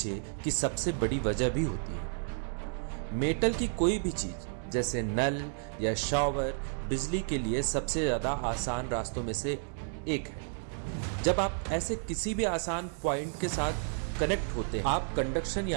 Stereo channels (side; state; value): left; silent; 57 dB below the other